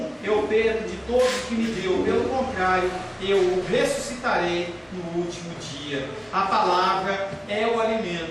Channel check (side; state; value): both; identical; correlation 1.00